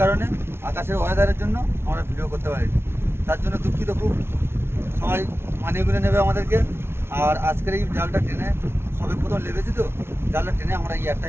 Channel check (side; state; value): left; late; 0.12 ms